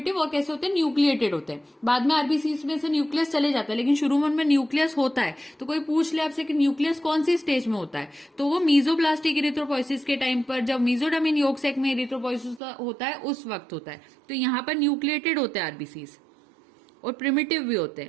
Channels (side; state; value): left; drops out; at 12.6 s